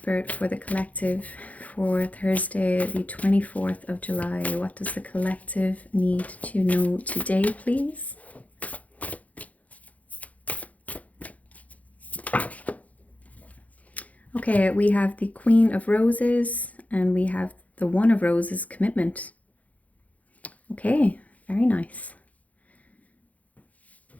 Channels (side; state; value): right; late; 0.071 ms